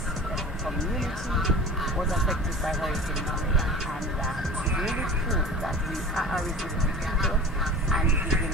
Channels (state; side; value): normal; both; correlation 0.37